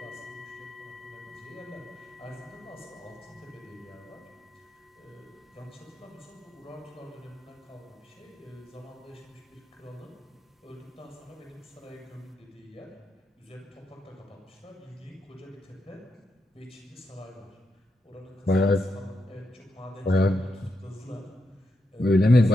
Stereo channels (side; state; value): both; normal; correlation 0.85